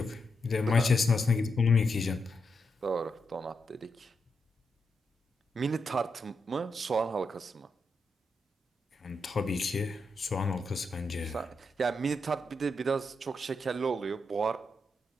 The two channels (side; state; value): both; normal; correlation 0.83